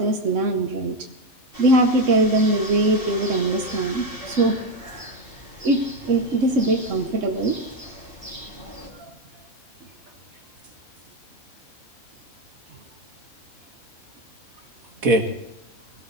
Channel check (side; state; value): both; normal; correlation 0.10